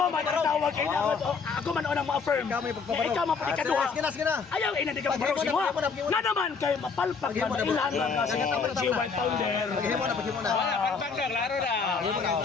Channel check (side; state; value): right; quieter; 5.2 dB